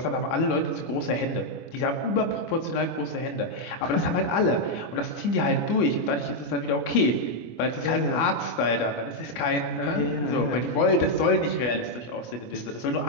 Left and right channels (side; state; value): right; late; 25 ms